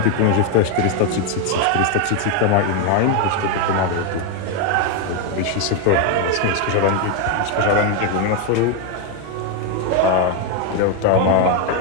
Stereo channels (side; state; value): both; different; correlation 0.01